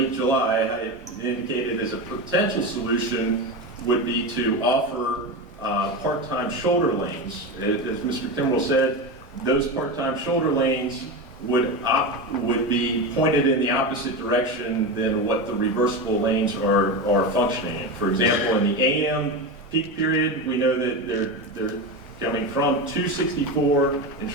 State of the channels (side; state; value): both; normal; correlation 0.20